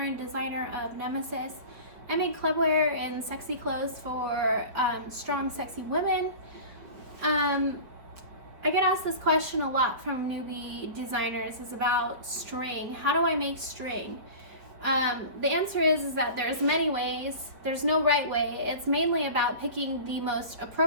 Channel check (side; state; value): left; late; 5.3 ms